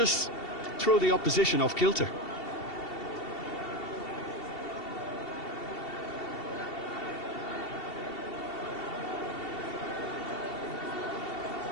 throw the opposition off kilter.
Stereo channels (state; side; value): late; right; 2.7 ms